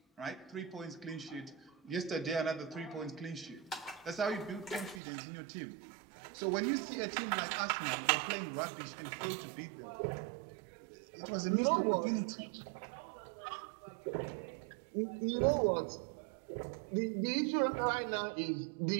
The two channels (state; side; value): drops out; left; at 5.0 s